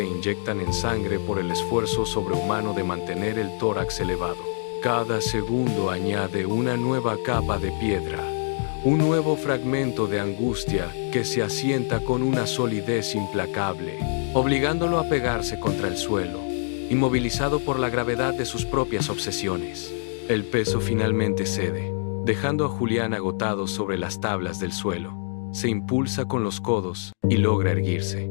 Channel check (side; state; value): right; silent; digital silence